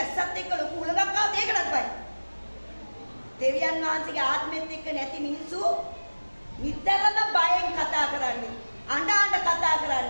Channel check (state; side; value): inverted; both; correlation -1.00